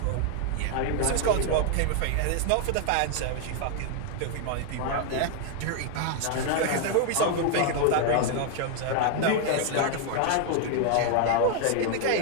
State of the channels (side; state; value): both; different; correlation 0.00